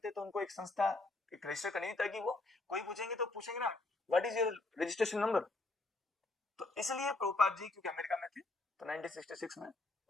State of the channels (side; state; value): right; quieter; 3.1 dB